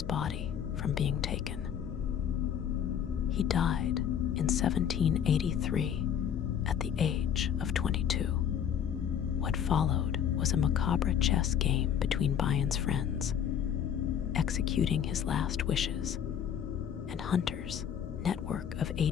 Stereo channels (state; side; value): quieter; right; 8.8 dB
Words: body from being taken. He died in 1783 at the age of 22. What followed was a macabre chess game between Byon's friends, executing his last wishes, and Hunter's network of